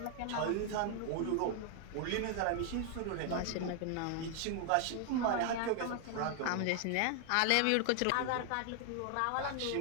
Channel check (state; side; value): different; both; correlation 0.00